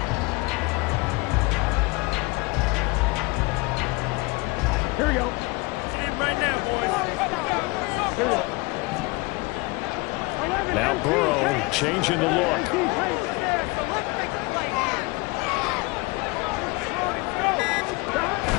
Here we go. Right now, boys. Here we go. Now Burrow changing the look.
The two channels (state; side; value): quieter; right; 25.1 dB